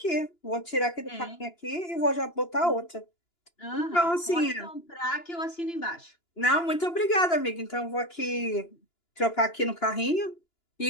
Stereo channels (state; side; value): late; right; 2.9 ms